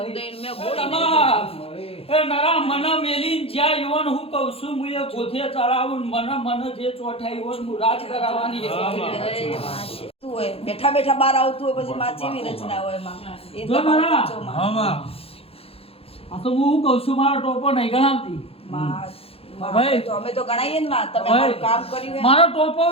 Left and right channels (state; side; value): late; right; 0.28 ms